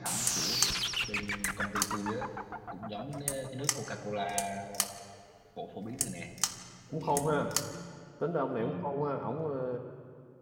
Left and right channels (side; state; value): both; identical; correlation 1.00